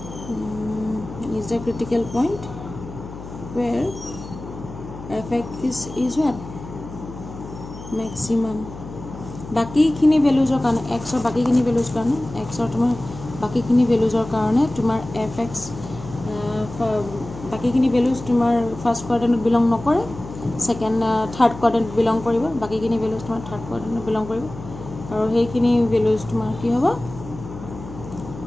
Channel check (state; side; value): noise; left; hum, 13 dB below the sound